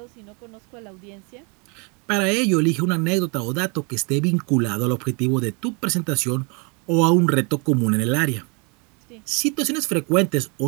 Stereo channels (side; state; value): left; quieter; 32.3 dB